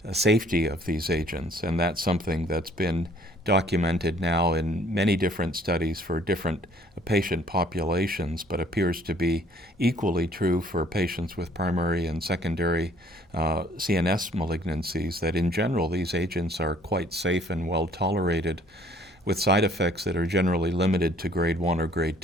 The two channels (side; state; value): both; normal; correlation 0.59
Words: safety of these agents, and that's something that's been documented now in many different studies for different patient populations, but appears to be equally true for patients with primary and secondary CNS malignancies, that in general these agents are quite safe and well tolerated, with side effects that are generally limited to grade 1 or grade